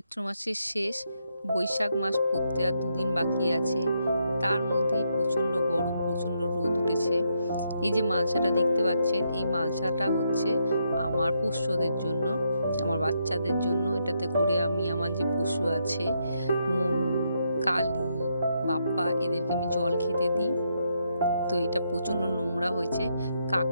মাসের শেষ, বৈশাখ মাস পড়তে আর 2 দিন বাকি আছে। তার মধ্যেই প্রচণ্ড গরম, প্রচণ্ড রোদ উঠেছে। এই যে মালসাটা দেখতে পাচ্ছেন, এই মালসাটা হচ্ছে আমার পোষ্যদের জন্য, আমার বাচ্চাদের জন্য। এটাতে করে আমি আমার যে পশু আছে, মনু, কালী, বাপ্পা, এদেরকে আমি জল খেতে দিই। তো এটা প্রচণ্ড নোংরা হয়েছে,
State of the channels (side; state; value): both; inverted; correlation -0.78